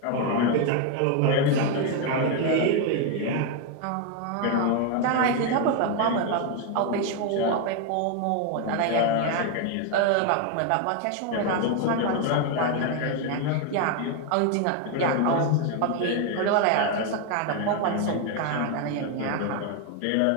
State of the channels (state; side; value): different; both; correlation 0.01